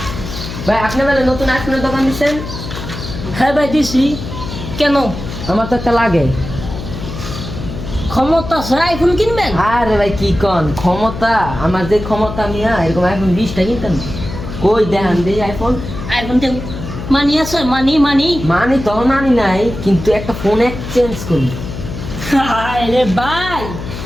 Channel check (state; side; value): noise; left; hum, 8 dB below the sound